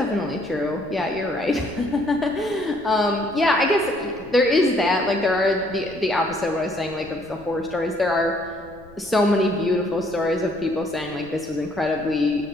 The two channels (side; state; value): left; noise; rumble, 23 dB below the sound